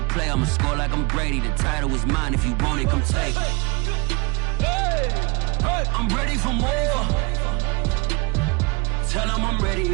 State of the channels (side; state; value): left; quieter; 27.4 dB